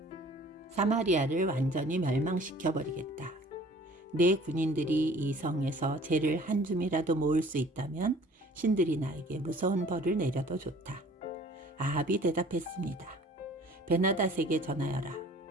사마리아를 완전히 멸망시켜버리겠다. 내 군인들이 이 성에서 재를 한 줌이라도 모을 수 있다면 신들이 나에게 무서운 벌을 내려도 좋다. 아합이 대답했습니다. 베나닷에게 전하여라.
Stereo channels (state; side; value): normal; both; correlation 0.51